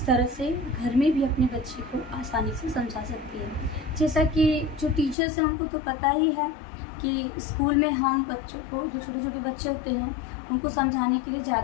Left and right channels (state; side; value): drops out; right; at 5.2 s